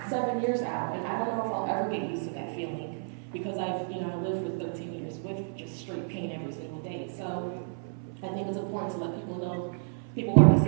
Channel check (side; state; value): left; silent; 57 dB below the other